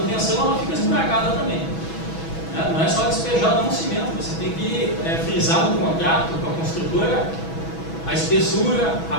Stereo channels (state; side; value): late; right; 6.1 ms